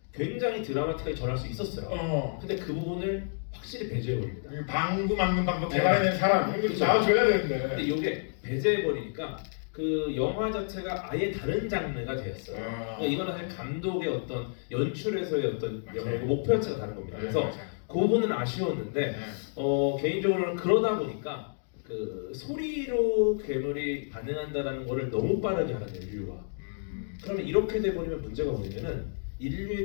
굉장히 드라마틱하게 전할 수 있었어요. 근데 그 부분을 확실히 배제해버립니다. 방구 막는 방법 개발해낸 사람 이거 나와줘야 되는데. 근데 이게 배제해버리니까 그 영화 자체가 아예 다른 장르가 되었어요. 그러니까 이거는 사실 감독의 어떤 연출에서의 어떤 목표 자체가 다른 겁니다. 그래서 그 부분은 아쉬웠는데 개인적으로는 그러다 보니까 그 소리로 괴물이 반응한다라는 거를 너무 빠르게 하는 인류가. 그러면 이렇게 돼버리면 문제가 뭐냐면은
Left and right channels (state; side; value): silent; right; digital silence